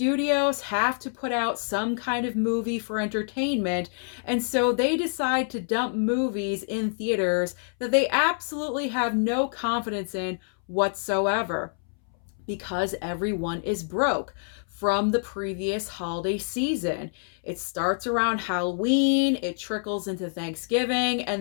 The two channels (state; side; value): silent; right; 60 dB below the other